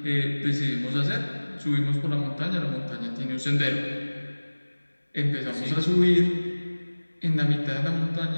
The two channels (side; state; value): both; inverted; correlation -1.00